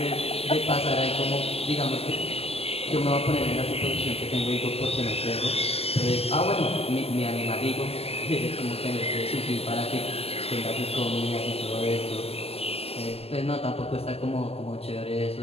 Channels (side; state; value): right; late; 0.29 ms